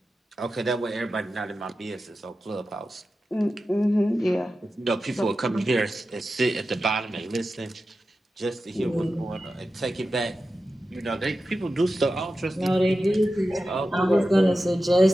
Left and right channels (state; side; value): normal; both; correlation 0.92